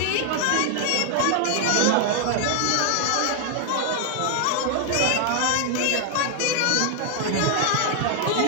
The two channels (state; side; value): different; both; correlation 0.00